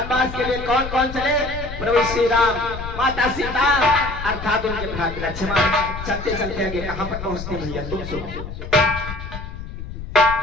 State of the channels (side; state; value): left; noise; rumble, 9 dB below the sound